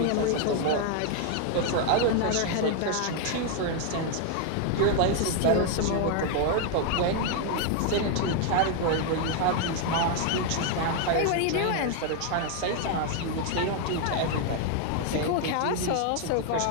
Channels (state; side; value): different; both; correlation 0.00